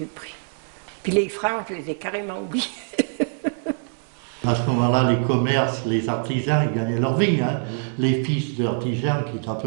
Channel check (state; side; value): silent; left; digital silence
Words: prix. Puis les francs, je les ai carrément oubliés. À ce moment-là, les commerces, les artisans, ils gagnaient leur vie. Hein. Les fils d'artisans, qui étaient à